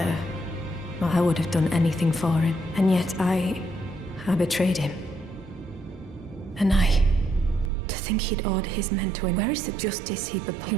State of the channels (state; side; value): drops out; left; at 7.7 s